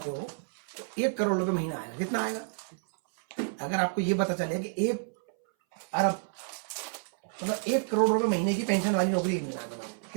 हो तो 1 करोड़ रुपए महीना आएगा। कितना आएगा? अगर आपको ये पता चले कि 1 अरब मतलब 1 करोड़ रुपए महीने की पेंशन वाली नौकरी मिलना है,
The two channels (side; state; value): left; silent; 58 dB below the other